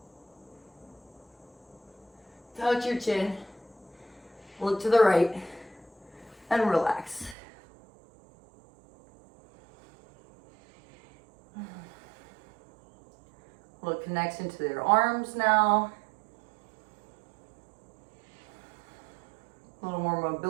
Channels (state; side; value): drops out; left; at 7.4 s